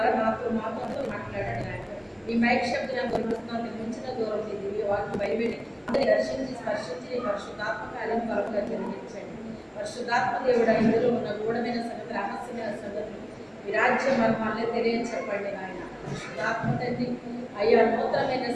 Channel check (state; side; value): identical; both; correlation 1.00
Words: మాతో మాట్లాడండి నాయన. మీ మైక్ శబ్దం దొరుకుతున్నాను మించిన దూరం మీ దివ్య వాక్యం బయలుపెట్టి అందరినీ దర్శించి స్పర్శించి పరశుద్ధాత్మ కార్యం కొరకుగా జరిగించండి. పరిశుద్ధాత్మ దేవుడా ఇందులో ఉన్న గూఢమైన సంగతి, రహస్యమైన సంగతులు మీ రాజ్య మర్మాలే తెలియచెప్పండి నాయన. పరిశుద్ధాత్మ తండ్రి అయ్యా నూతనమైన